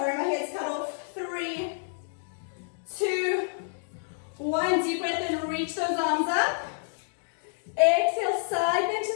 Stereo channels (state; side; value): silent; right; digital silence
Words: my head's cut off. 3, 2, 1. Deep breath in, reach those arms up. Exhale, side bend to